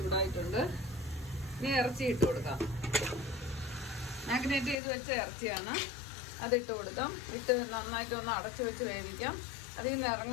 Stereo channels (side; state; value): right; drops out; at 4.8 s